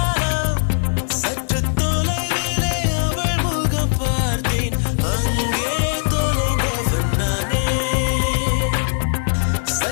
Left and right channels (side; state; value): right; silent; 66 dB below the other